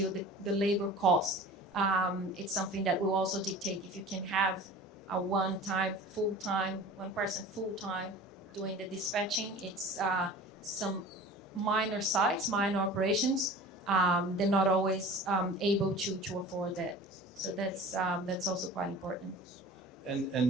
the labor cost, it's something that will also dictate if you can have a one person full-time doing the dispatching. It's some minor sites, minor operations, they're not always able to afford that. So that's also quite important.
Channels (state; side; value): normal; both; correlation 0.39